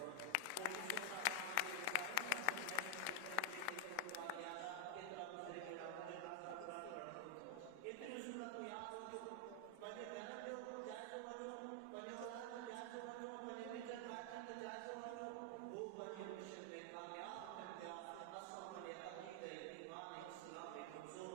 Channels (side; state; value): both; different; correlation 0.00